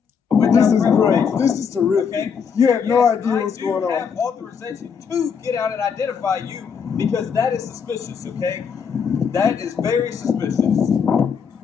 This is great. This is terrific. Okay? You have no Yes, idea what's going I do have on. authorization to get out and identify you because that is suspicious, okay? That is very suspicious.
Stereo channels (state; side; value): quieter; right; 6.5 dB